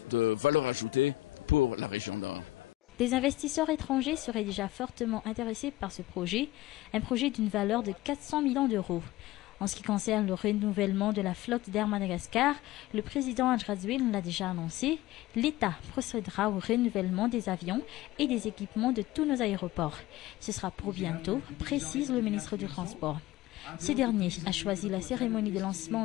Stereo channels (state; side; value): quieter; right; 16.9 dB